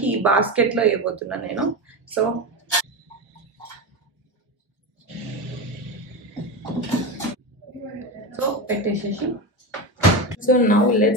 ఈ బాస్కెట్ లో వేయబోతున్నాను నేను. సో పెట్టేసేసి so now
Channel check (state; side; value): normal; both; correlation 0.19